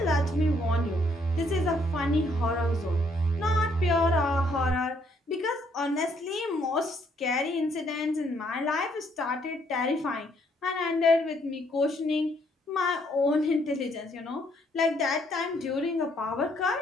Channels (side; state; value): both; normal; correlation 0.69